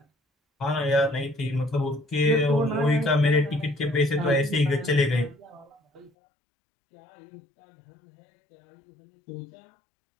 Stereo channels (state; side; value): drops out; right; at 6.1 s